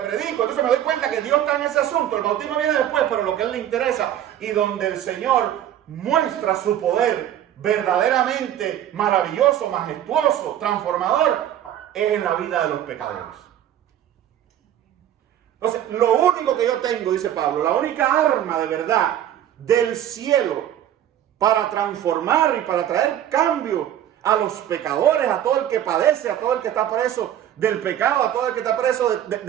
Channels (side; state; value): left; quieter; 11.1 dB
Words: Entonces me doy cuenta que Dios está en ese asunto. El bautismo viene después, pero lo que a Él le interesa y donde el Señor muestra su poder verdaderamente maravilloso, majestuoso, transformador, es en la vida de los pecadores. Entonces, lo único que yo tengo, dice Pablo, la única arma de verdad del cielo para transformar y para traer cambio a los pecadores, a todo el que padece, a todo el que está preso del pecado, a todo el que está preso